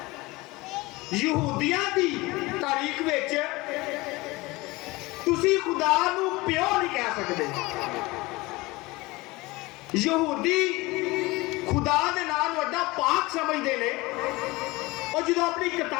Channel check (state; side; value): quieter; right; 22.0 dB